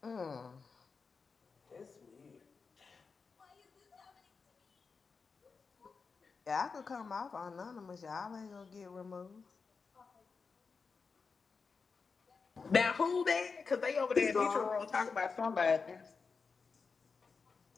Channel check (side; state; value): right; quieter; 4.9 dB